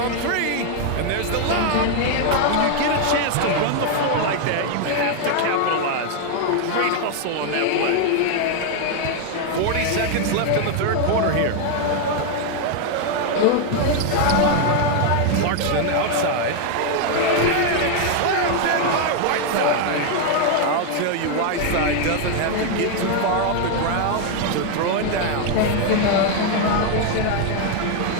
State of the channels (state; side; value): different; both; correlation 0.01